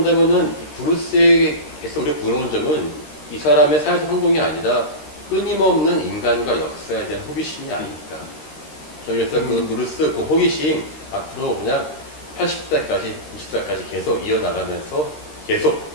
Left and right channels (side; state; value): right; late; 13 ms